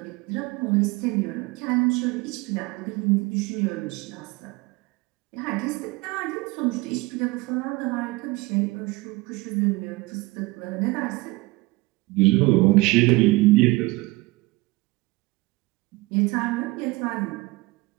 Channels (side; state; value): left; quieter; 22.3 dB